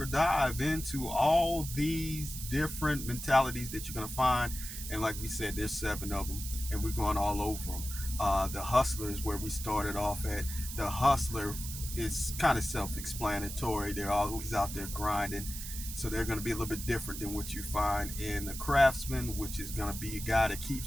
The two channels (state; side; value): noise; right; hiss, 8 dB below the sound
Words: dive into all these different mentalities that you're going to find, and like we said, there's 7 of them, and we're going all over them. The hustler is where we started off at. The hustler is kind of self-explanatory. They're always out there grinding, so they're going to be a little bit different than what you find in the craftsman, which is going to be a guy that